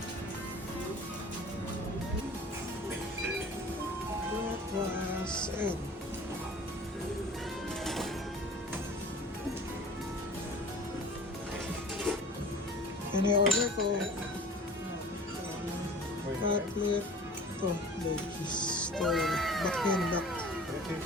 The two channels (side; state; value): both; normal; correlation 0.43